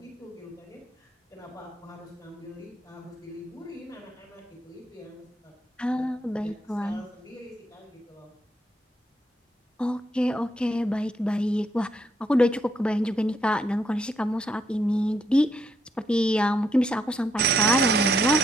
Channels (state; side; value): normal; both; correlation 0.76